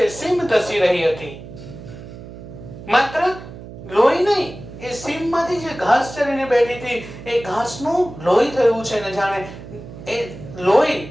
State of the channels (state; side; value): noise; right; hum, 14 dB below the sound